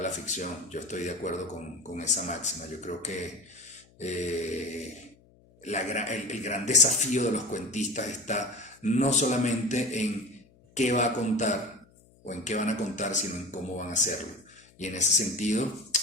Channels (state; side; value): noise; left; hum, 29 dB below the sound